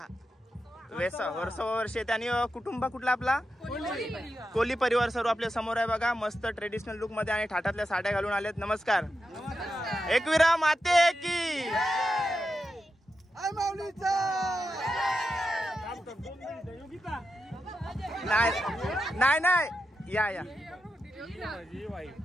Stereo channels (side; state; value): both; normal; correlation 0.88